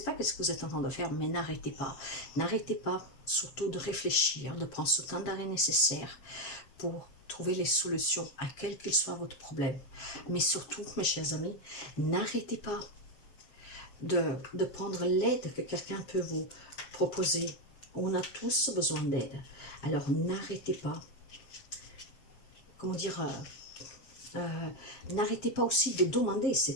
pas ce que vous êtes en train de faire, mais n'arrêtez pas. N'arrêtez pas surtout de réfléchir, de prendre ce temps d'arrêt nécessaire pour trouver les solutions à quel qu'il soit votre problème. Mais surtout, mes chers amis, n'arrêtez pas de prendre l'aide que quelqu'un peut vous proposer. On a tous besoin d'aide. Alors n'arrêtez pas, comment dire, n'arrêtez pas aussi de demander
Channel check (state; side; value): late; right; 7.5 ms